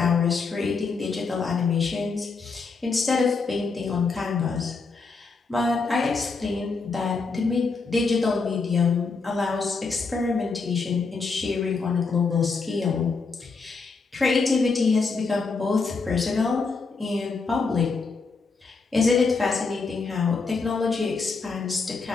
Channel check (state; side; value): quieter; right; 4.4 dB